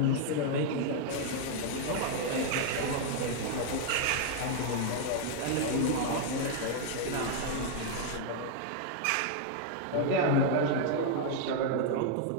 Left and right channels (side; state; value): both; different; correlation 0.00